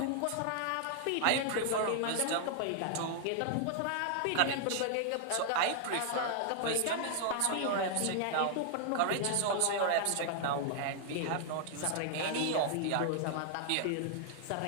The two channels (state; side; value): different; both; correlation -0.01